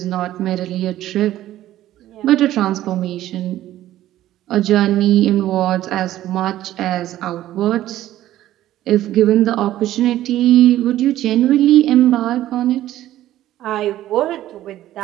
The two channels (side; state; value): left; quieter; 13.7 dB